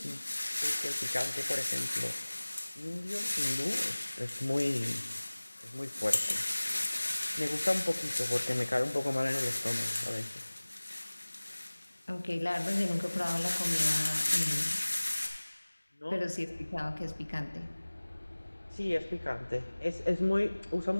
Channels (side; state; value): both; inverted; correlation -1.00